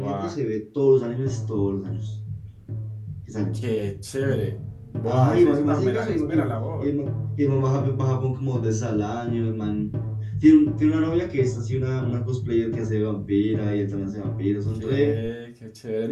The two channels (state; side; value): identical; both; correlation 1.00